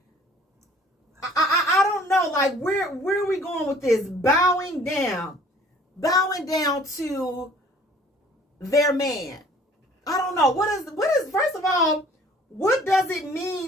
I don't know, like, where are we going with this? Bowing down to their man. I don't know. What is first of all, what does it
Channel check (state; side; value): normal; both; correlation 0.54